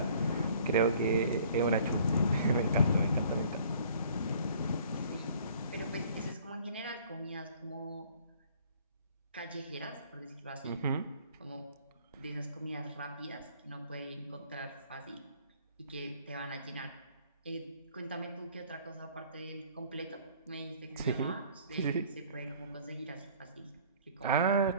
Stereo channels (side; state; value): both; inverted; correlation -0.54